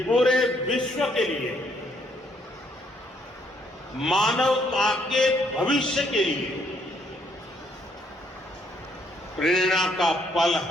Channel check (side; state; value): both; normal; correlation 0.70